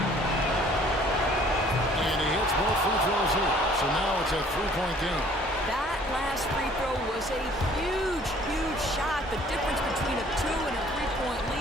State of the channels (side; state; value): both; normal; correlation 0.56